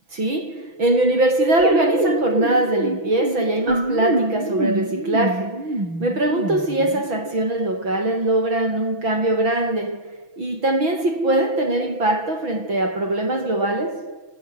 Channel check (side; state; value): left; late; 6.1 ms